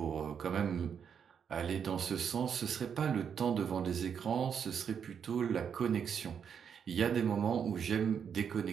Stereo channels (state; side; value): quieter; left; 7.4 dB